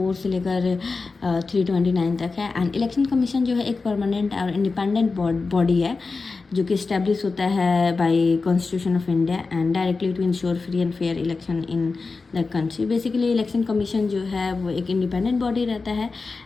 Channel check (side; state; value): right; quieter; 4.1 dB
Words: से लेकर 329 तक है। एंड इलेक्शन कमीशन जो है एक परमानेंट और इंडिपेंडेंट बॉडी है जो कि इस्टेब्लिश होता है by constitution of India and directly to ensure free and fair election in the country. Basically election commission जो है वो एक इंडिपेंडेंट बॉडी रहता है